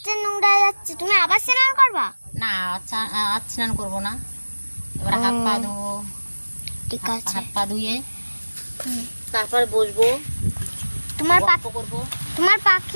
নোংরা যাচ্ছে, তুমি আবার স্নান করবা? না, আজ স্নান করবো না, এবার হাত পা ধোবো। ঠিক আছে। হাত পা ধুয়ে তারপর বসবো, তোমার গল্প করবো। তোমার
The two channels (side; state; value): both; inverted; correlation -1.00